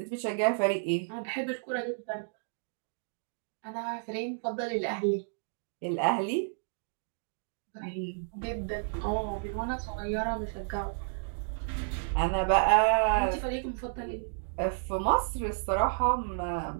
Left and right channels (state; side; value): silent; left; digital silence